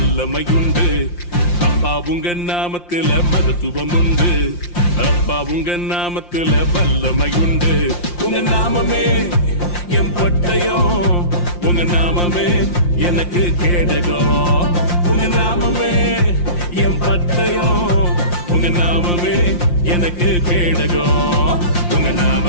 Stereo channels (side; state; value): right; late; 5.7 ms